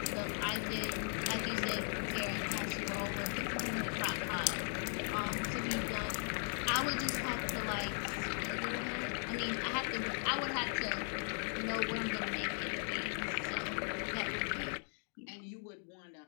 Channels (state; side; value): silent; right; 52 dB below the other